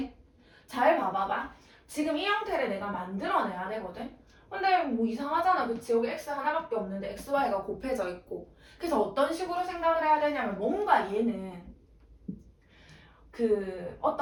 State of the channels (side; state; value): both; identical; correlation 1.00